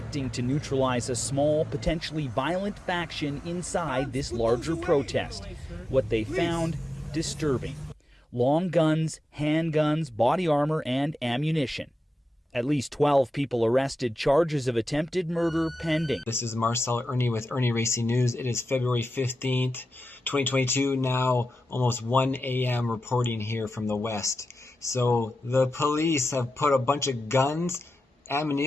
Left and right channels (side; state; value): both; normal; correlation 0.92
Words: to neutralize a small, potentially violent faction inside this larger protest. What they found, disturbing. Long guns, handguns, body armor, and ammunition. At least 12 people arrested, charges of attempted murder pending. This is Marcel Irnie with Irnie Racing News. It is February 15th, 2022, now almost 1 a.m. reporting here from the West. So the police have put a bunch of guns,